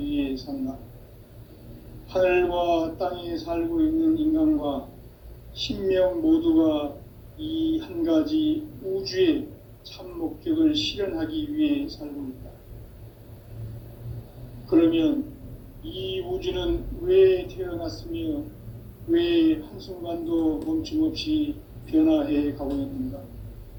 위해 산다. 하늘과 땅에 살고 있는 인간과 신명 모두가 이 한 가지 우주의 참 목적을 실현하기 위해 살고 있다. 그러면 이 우주는 왜 태어났으며 왜 한순간도 멈춤없이 변화해 가고 있는가?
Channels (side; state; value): both; identical; correlation 1.00